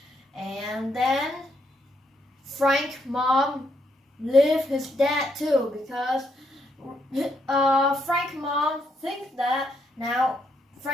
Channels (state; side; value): normal; both; correlation 0.76